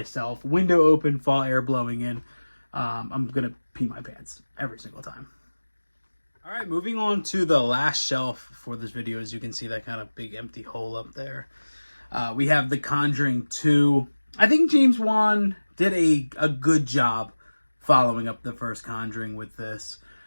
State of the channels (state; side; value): inverted; both; correlation -1.00